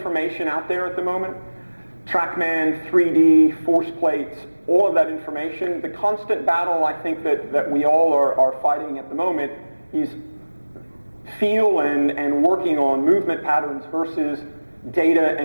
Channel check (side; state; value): both; inverted; correlation -1.00